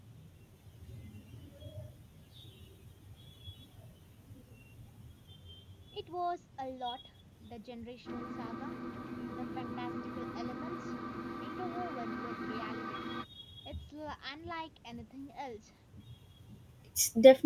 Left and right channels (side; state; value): both; identical; correlation 1.00